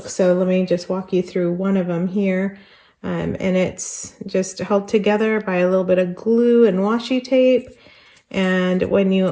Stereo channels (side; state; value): both; identical; correlation 1.00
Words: So let me just walk you through one of them here. And it's just held together by a little bit of glue and washi tape. And when you